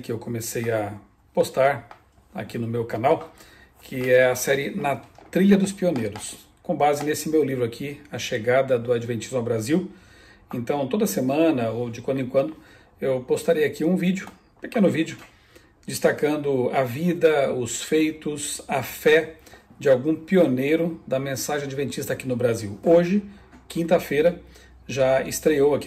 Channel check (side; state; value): both; identical; correlation 1.00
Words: eu comecei a postar aqui no meu canal, que é a série Na Trilha dos Pioneiros, com base nesse meu livro aqui, A Chegada do Adventismo ao Brasil. Então, toda semana ou de quando em quando, eu postarei aqui um vídeo, um pequeno vídeo, destacando a vida, os feitos, a fé de algum pioneiro da mensagem adventista aqui no Brasil. Hoje, quinta-feira, já estreou